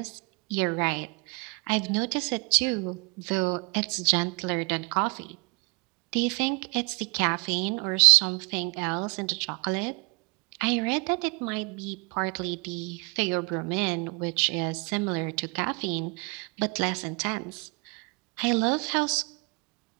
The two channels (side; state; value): left; quieter; 30.9 dB